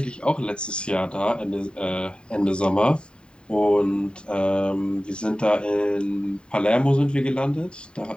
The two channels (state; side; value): late; right; 0.050 ms